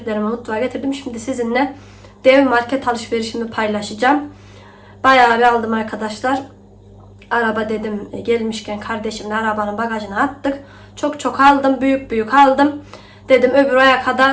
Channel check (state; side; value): identical; both; correlation 1.00